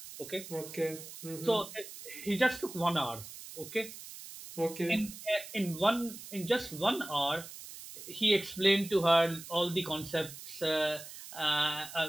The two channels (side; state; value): right; noise; hiss, 13 dB below the sound